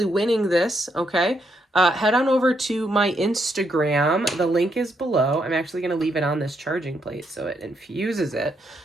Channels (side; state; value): both; normal; correlation 0.77